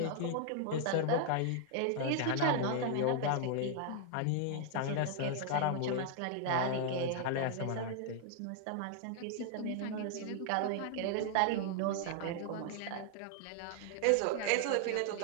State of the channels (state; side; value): different; both; correlation 0.00